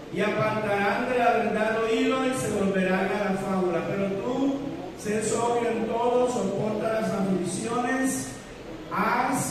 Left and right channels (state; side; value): identical; both; correlation 1.00